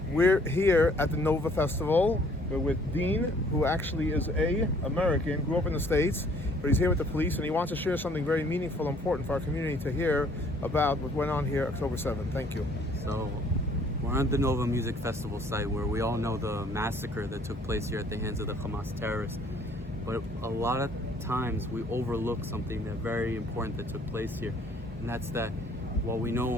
we're here at the Nova Festival. We're with Dean, who actually is a American, grew up in the States, but he's here with the police and he wants to share something very meaningful and important for our community to hear about what went on here October 7th. Thank you. So, we're at the Nova Music Festival site where we all know the massacre that took place here at the hands of the Hamas terrorists. But a lot of times we overlook something that's very important that took place here. And that's that while we know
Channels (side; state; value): both; normal; correlation 0.59